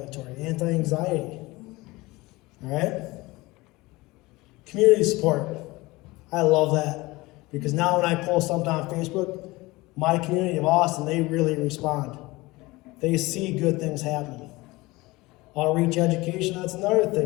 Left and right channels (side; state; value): right; quieter; 21.5 dB